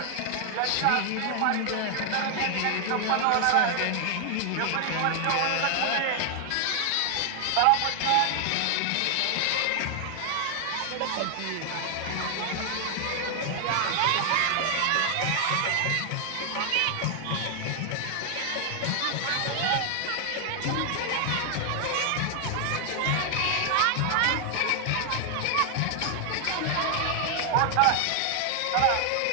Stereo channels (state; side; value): different; both; correlation 0.00